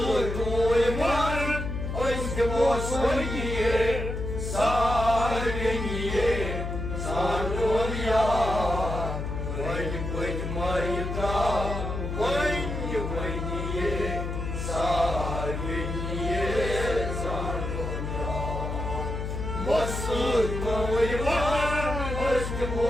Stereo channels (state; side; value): noise; left; hum, 4 dB below the sound